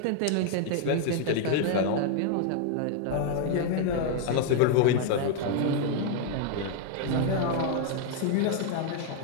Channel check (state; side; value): different; both; correlation 0.00